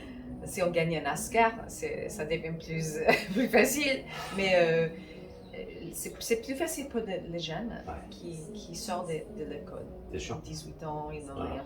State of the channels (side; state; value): both; identical; correlation 1.00